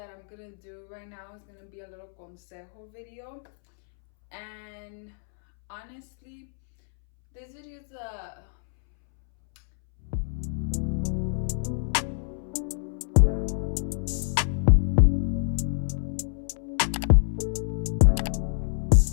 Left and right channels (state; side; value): silent; right; 60 dB below the other